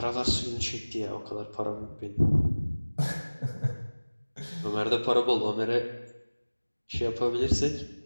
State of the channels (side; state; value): both; inverted; correlation -1.00